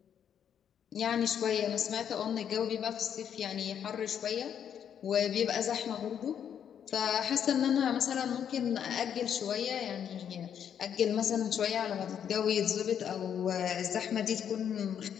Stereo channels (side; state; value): right; quieter; 8.7 dB